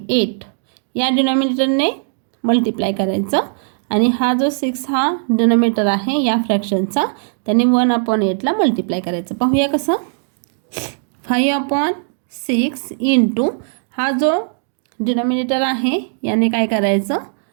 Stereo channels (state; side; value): silent; left; digital silence